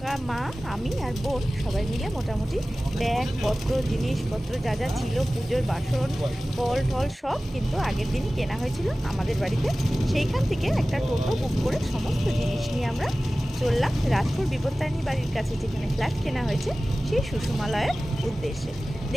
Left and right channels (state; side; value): normal; both; correlation 0.97